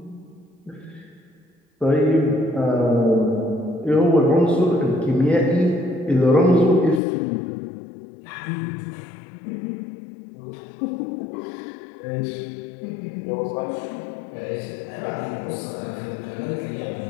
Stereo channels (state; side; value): drops out; right; at 7.0 s